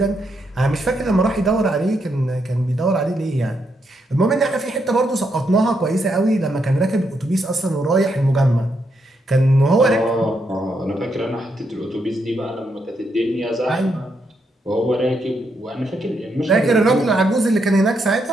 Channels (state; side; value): normal; both; correlation 0.79